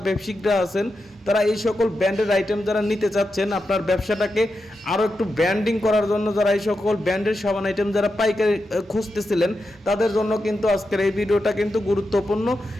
ব্যবসায়িকরা আছেন তারা এই সকল ব্র্যান্ডের আইটেম যারা নিতে চাচ্ছেন, আপনার ব্যবসাটাকে আরও একটু ব্র্যান্ডিং করার জন্য, যারা এই সকল ব্র্যান্ডের সাবান আইটেম যারা পাইকারি খুঁজতেছিলেন তাদের জন্য কিন্তু আজকের এই ভিডিওটা কিন্তু গুরুত্বপূর্ণ।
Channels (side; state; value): both; normal; correlation 0.88